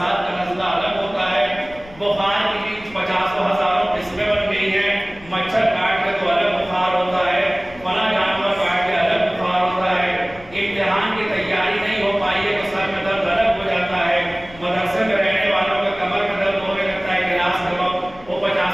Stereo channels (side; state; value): left; noise; rumble, 21 dB below the sound